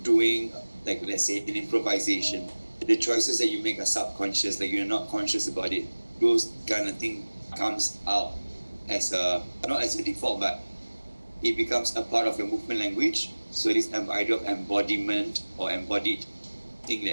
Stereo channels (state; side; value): inverted; both; correlation -1.00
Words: doing, let's say, an improvisation, the choices that you make are subconscious, you're not conscious about it. Those kind of thing comes out as not as a default, but it becomes a part of your movement language. So this idea of embodiment or embodied thing,